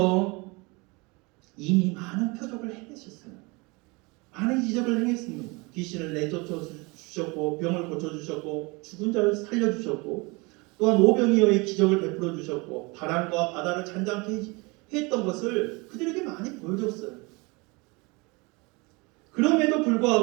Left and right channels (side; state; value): left; quieter; 26.9 dB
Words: 이미 많은 표적을 행하셨어요. 많은 기적을 행했습니다. 귀신을 내쫓아 주셨고, 병을 고쳐주셨고, 죽은 자를 살려주셨고, 또한 오병이어의 기적을 베풀어 주셨고, 바람과 바다를 잔잔케 했던 것을 그들에게 많이 보여줬어요. 그럼에도